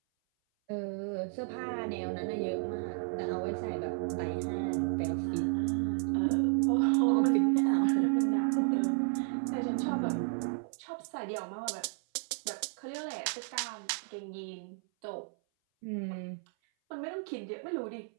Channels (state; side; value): silent; left; 56 dB below the other